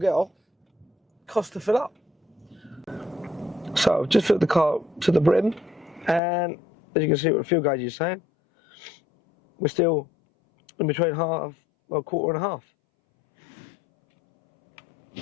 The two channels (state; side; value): drops out; right; at 6.2 s